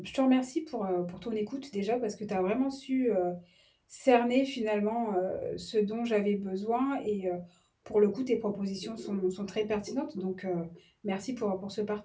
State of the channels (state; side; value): identical; both; correlation 1.00